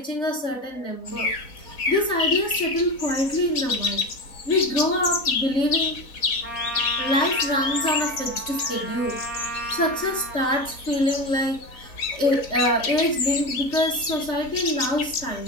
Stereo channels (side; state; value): right; late; 3.9 ms